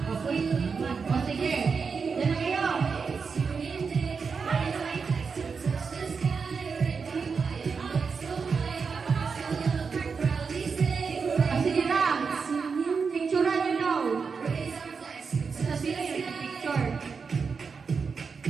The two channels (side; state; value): left; quieter; 5.4 dB